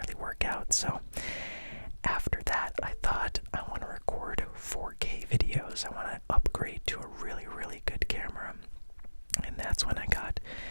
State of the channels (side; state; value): both; inverted; correlation -1.00